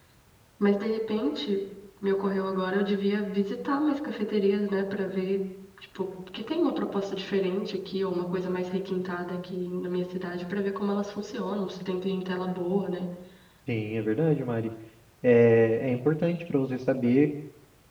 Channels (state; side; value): identical; both; correlation 1.00